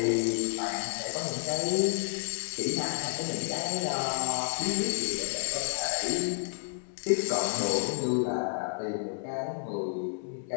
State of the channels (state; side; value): silent; right; digital silence